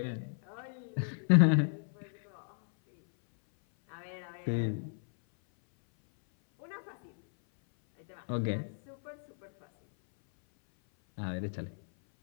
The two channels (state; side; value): silent; right; 55 dB below the other